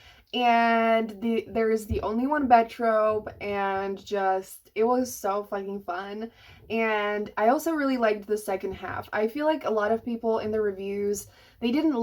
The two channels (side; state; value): both; identical; correlation 1.00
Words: and there is the only one bed trope, and just it was so fucking fun. And I also really liked the second half. I feel like a lot of people in the reviews, they didn't